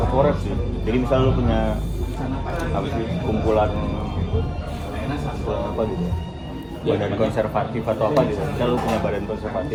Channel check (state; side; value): identical; both; correlation 1.00